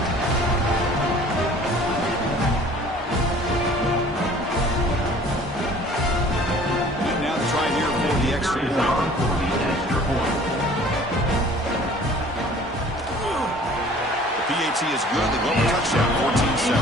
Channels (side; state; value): both; normal; correlation 0.50